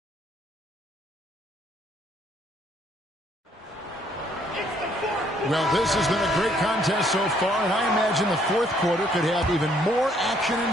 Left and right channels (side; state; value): both; normal; correlation 0.66